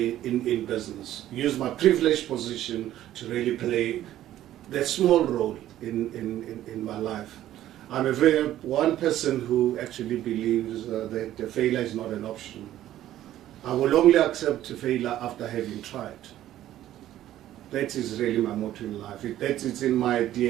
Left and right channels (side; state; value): left; quieter; 13.0 dB